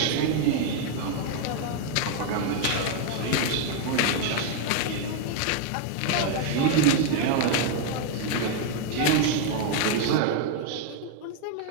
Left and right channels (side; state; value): both; different; correlation 0.00